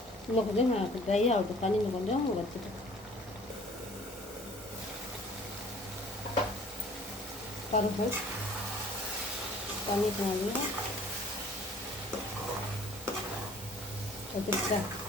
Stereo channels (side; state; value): both; normal; correlation 0.52